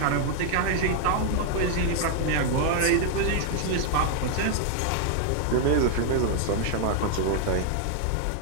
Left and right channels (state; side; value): different; both; correlation 0.00